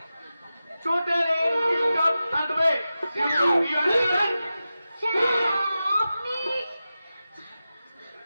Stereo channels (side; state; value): both; inverted; correlation -0.93